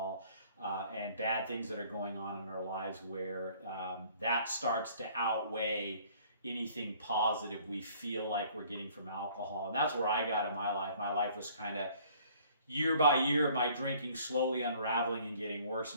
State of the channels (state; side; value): inverted; both; correlation -0.57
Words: and bad things that are going on in our lives where that starts to outweigh anything positive we feel like we're getting from alcohol. And that's where I got in my life. My life was kind of year by year of my drinking slowly unraveling and getting worse